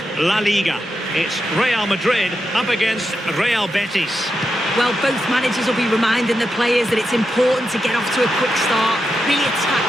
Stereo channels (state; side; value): normal; both; correlation 0.87